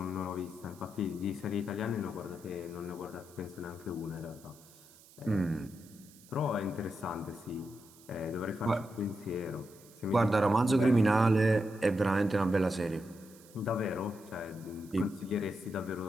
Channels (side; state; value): right; noise; hiss, 24 dB below the sound